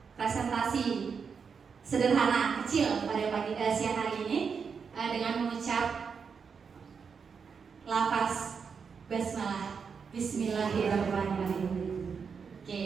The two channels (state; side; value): quieter; left; 6.0 dB